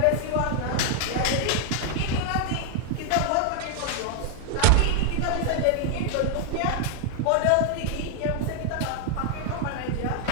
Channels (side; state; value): both; different; correlation 0.00